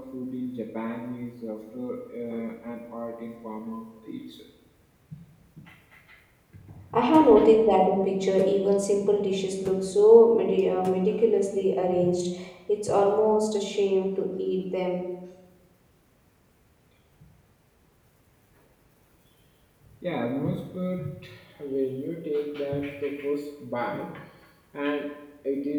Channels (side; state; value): both; identical; correlation 1.00